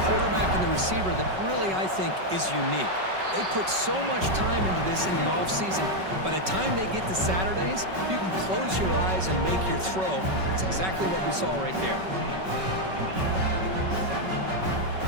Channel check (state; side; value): late; left; 5.3 ms